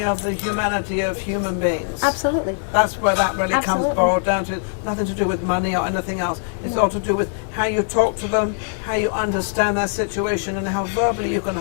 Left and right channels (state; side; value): silent; right; digital silence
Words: of the humanity of human beings. Absolutely. That's where that really comes Absolutely. boiled down to. Nothing to do with money or anything else. It's all to do with how you talk to them, how you understand their situation, and how verbally you can